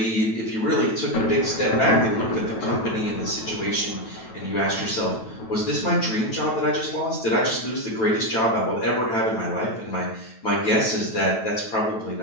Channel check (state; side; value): late; right; 9.1 ms